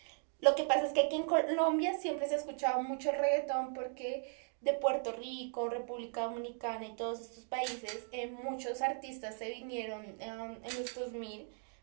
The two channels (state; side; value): silent; left; 53 dB below the other